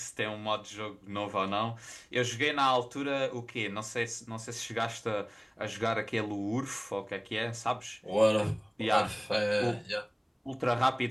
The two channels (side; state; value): both; identical; correlation 1.00